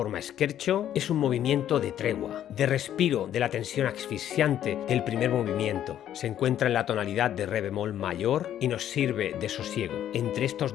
scherzo. Es un movimiento de tregua, de respiro de la tensión asfixiante del primer movimiento. Se encuentra en la tonalidad de re bemol mayor y nos sirve de sosiego entre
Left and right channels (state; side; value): quieter; right; 10.9 dB